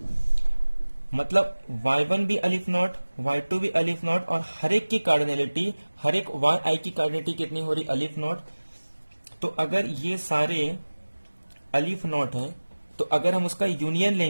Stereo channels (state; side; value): inverted; both; correlation -1.00